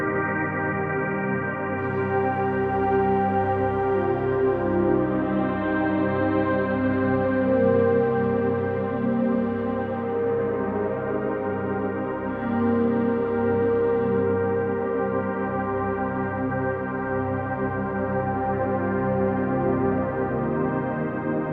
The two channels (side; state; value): both; identical; correlation 1.00